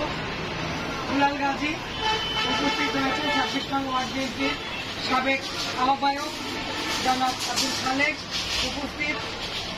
দুলাল গাজী, উপস্থিত রয়েছেন 26 নং ওয়ার্ড বিএনপির সাবেক আহ্বায়ক জনাব আব্দুল খালেক, উপস্থিত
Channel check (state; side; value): identical; both; correlation 1.00